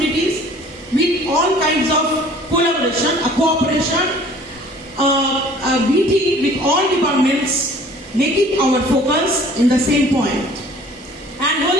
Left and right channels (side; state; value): both; normal; correlation 0.51